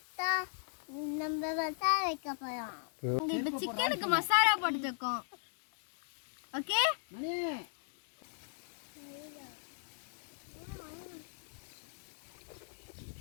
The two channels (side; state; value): right; silent; digital silence